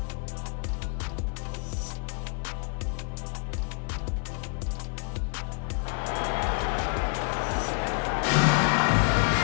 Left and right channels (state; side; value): quieter; right; 39.1 dB